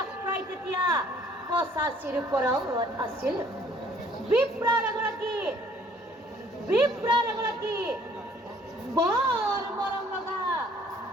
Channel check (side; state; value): both; normal; correlation 0.59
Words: প্ৰায় তেতিয়া 85ৰ ওপৰত আছিল। বিপ্ৰৰ এগৰাকী বৰ মৰম লগা